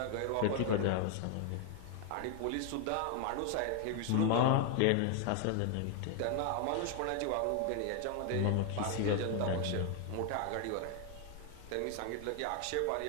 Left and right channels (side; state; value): both; different; correlation 0.00